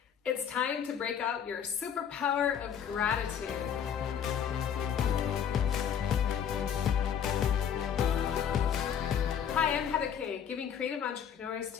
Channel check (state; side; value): quieter; right; 8.4 dB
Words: It's time to break out your superpower of gratitude. Hi, I'm Kaye, giving creative entrepreneurs